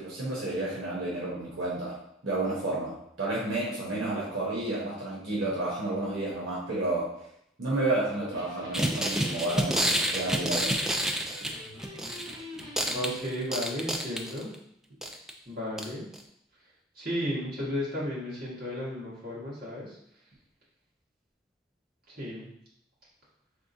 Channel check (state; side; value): normal; both; correlation 0.40